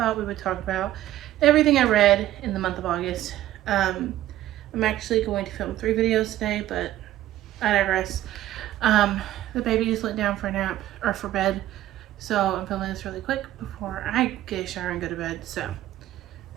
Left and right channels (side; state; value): left; quieter; 13.8 dB